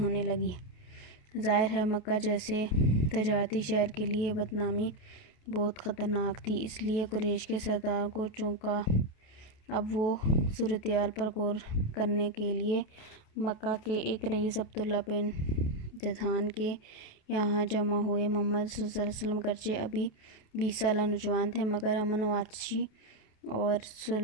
لگی۔ ظاہر ہے مکہ جیسے تجارتی شہر کے لیے بدنامی بہت خطرناک تھی، اس لیے قریش کے سرداروں کو چونکا۔ اب وہ صورتحال پر غور کرنے کے لیے مکہ کے ایک رئیس عبداللہ بن جدعان کے یہاں جمع ہوئے۔ محمد صلی اللہ علیہ وسلم گرچہ ابھی 20 سالہ نوجوان تھے، مگر امن و آتشی اور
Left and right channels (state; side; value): late; right; 28 ms